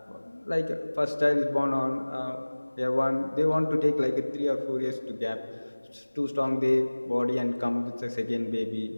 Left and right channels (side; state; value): both; inverted; correlation -1.00